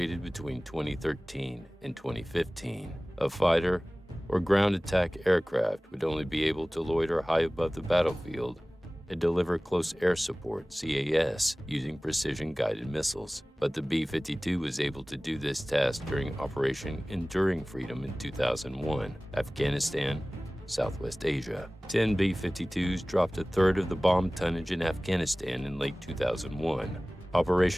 between 2013 and 2015. A fighter or ground attack aircraft would only be able to loiter high above the battlefield and deliver close air support, CAS, using precision-guided missiles. But the B-52 was able to do this task during Operation Enduring Freedom in 2001, Afghanistan, Southwest Asia. 10 B-52s dropped a third of the bomb tonnage in Afghanistan in late 2001,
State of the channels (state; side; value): normal; both; correlation 0.98